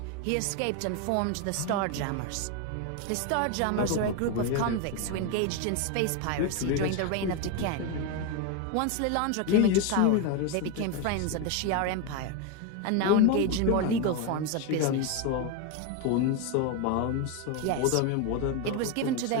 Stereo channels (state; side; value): different; both; correlation 0.02